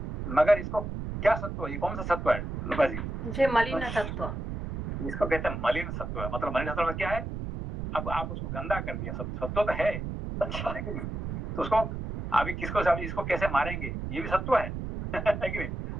मगर इसको क्या सत्व, ये कौन सा सत्व है लुका जी? जे मलिन सत्व, इसको कहते हैं मलिन सत्व है। मतलब मलिन सत्व क्या है, अब आप उसको गंदा कर दिया, सत्व तो है, अच्छा है कि नहीं। तो उसको अभी इसको कैसे मारेंगे, ये भी सत्व है है कि नहीं।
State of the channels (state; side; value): noise; right; rumble, 5 dB below the sound